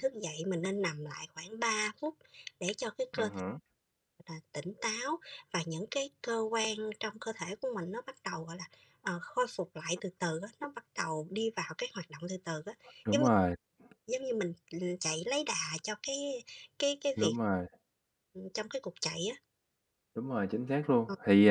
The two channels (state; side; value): identical; both; correlation 1.00